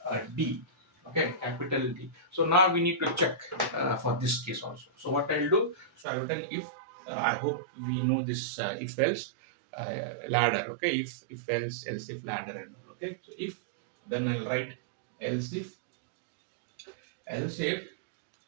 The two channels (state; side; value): drops out; left; at 6.1 s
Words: d, okay, capital D, so now we need to check for this case also. So what I'll do, so I've written if, I hope we know this if else ladder. Okay, if else if ladder, and all. Okay, so if, then I'll write else if